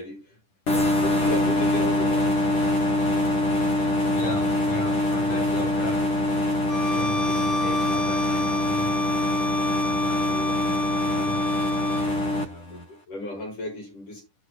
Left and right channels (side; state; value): right; late; 10 ms